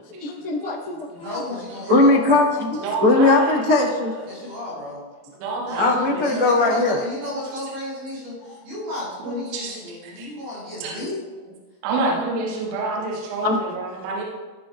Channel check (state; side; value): late; left; 23 ms